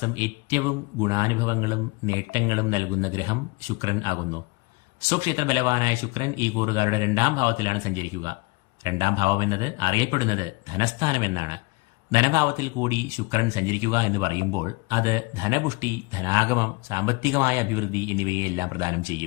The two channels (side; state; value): right; quieter; 25.2 dB